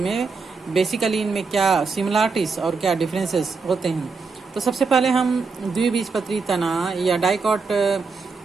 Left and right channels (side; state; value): left; quieter; 4.6 dB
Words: बेसिकली इनमें क्या सिमिलरिटीज और क्या डिफरेंसेस होते हैं। तो सबसे पहले हम द्विबीजपत्री तना या डाइकॉट